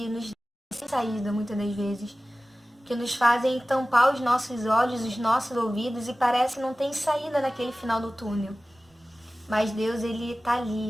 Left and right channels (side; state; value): both; normal; correlation 0.97